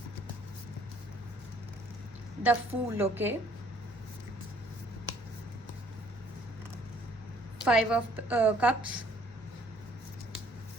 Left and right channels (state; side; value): normal; both; correlation 0.61